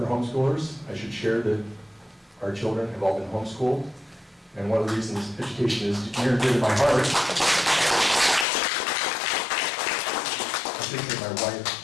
homeschoolers. I should share that our children have all been homeschooled. And one of the reasons education is near and dear to my heart. I think that my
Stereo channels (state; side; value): drops out; right; at 8.5 s